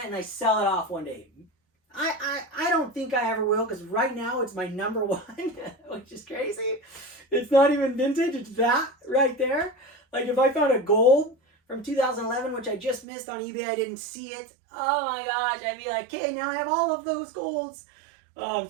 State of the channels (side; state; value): left; drops out; at 13.1 s